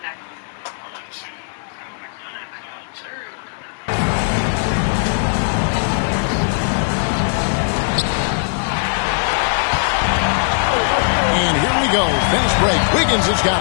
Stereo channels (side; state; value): right; silent; 67 dB below the other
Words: Fast break. Wiggins has got